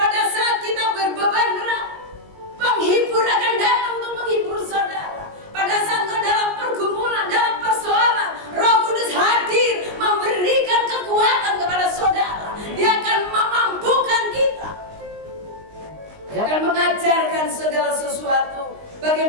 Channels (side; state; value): left; late; 19 ms